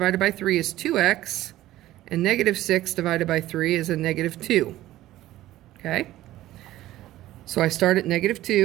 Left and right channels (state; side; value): quieter; left; 15.0 dB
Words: by 3 is 2x, and negative 6 divided by 3 is a negative 2. Okay? So I start at negative